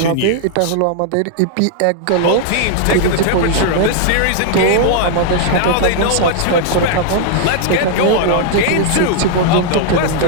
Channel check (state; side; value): different; both; correlation -0.01